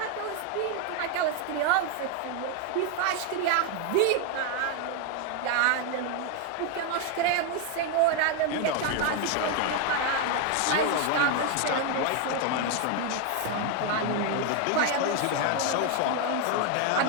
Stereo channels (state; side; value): different; both; correlation 0.01